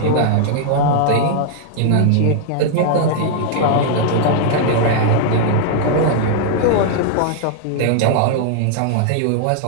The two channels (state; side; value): different; both; correlation -0.01